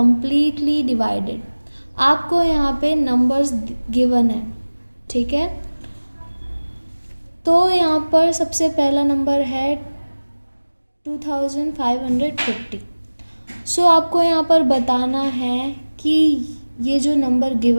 divided. आपको यहाँ पे numbers given है, ठीक है। तो यहाँ पर सबसे पहला नंबर है 2550। सो आपको यहाँ पर बताना है कि ये जो नंबर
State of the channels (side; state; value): both; inverted; correlation -1.00